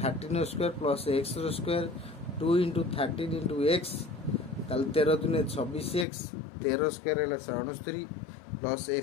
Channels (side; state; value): right; drops out; at 6.1 s